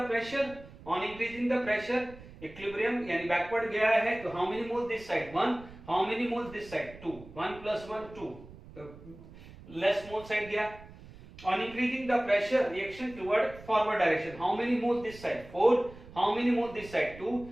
pressure, on increasing the pressure, equilibrium यानी बैकवर्ड गया है तो how many moles this side 1, how many moles this side 2, 1 + 1 2, less mole side गया। On increasing the pressure, reaction toward forward direction. How many moves this side? 4. How many moves this side? 2.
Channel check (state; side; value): noise; right; rumble, 18 dB below the sound